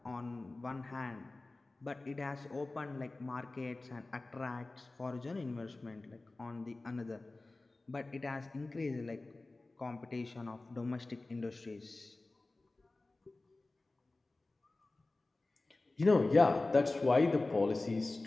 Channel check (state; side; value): quieter; right; 3.1 dB